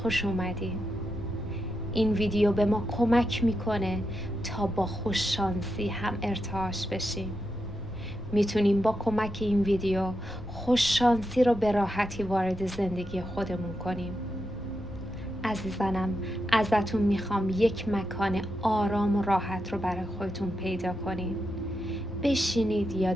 اومدین. این ویدیو به ما کمک میکنه تا با خوششانسی هم ارتعاش بشیم. میتونیم با کمک این ویدیو خوششانسی رو به راحتی وارد زندگی خودمون کنیم. عزیزانم، ازتون میخوام یک مکان آرام و راحت رو برای خودتون پیدا کنید. بشینید یا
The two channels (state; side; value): normal; both; correlation 0.86